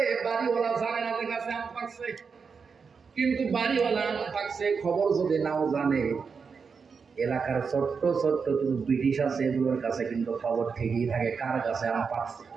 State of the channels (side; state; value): left; quieter; 5.6 dB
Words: বাড়িওয়ালা জানে না যে গাছে আম পাকছে। কিন্তু বাড়িওয়ালা আম পাকছে খবর যদি নাও জানে, এলাকার ছোট্ট ছোট্ট ব্রিটিশ আছে, এগুলোর কাছে কিন্তু খবর ঠিকই থাকে কার গাছে আম পাকছে।